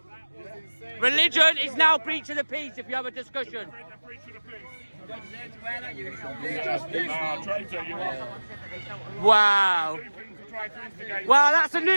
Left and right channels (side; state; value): both; inverted; correlation -1.00